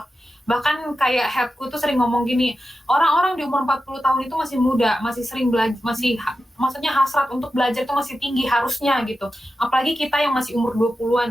Bahkan kayak headku tuh sering ngomong gini, orang-orang di umur 40 tahun itu masih muda, masih sering belajar, masih maksudnya hasrat untuk belajar itu masih tinggi harusnya gitu. Apalagi kita yang masih umur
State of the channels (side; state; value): both; normal; correlation 0.91